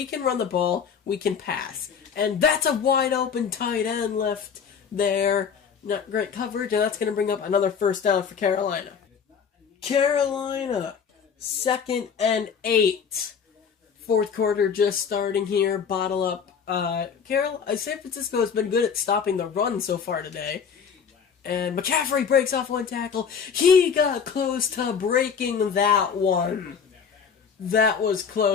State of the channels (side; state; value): right; quieter; 6.7 dB